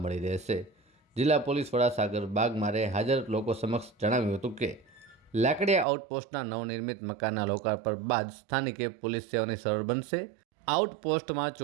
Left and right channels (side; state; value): left; drops out; at 5.9 s